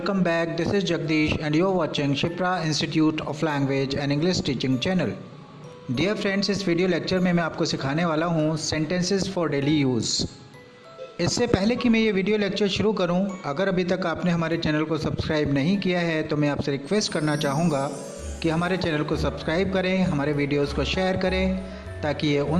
back. This is Jagdish and you are watching Shipra Institute of Language and English Teaching channel. Dear friends, इस video lecture में मैं आपको सिखाने वाला हूँ sentences for daily use. इससे पहले कि मैं ये वीडियो लेक्चर शुरू करूँ, अगर अभी तक आपने हमारे चैनल को सब्सक्राइब नहीं किया है तो मैं आपसे रिक्वेस्ट करना चाहूँगा कि हमारे चैनल को सब्सक्राइब करें, हमारे वीडियोज़ को शेयर करें ताकि ये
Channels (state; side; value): identical; both; correlation 1.00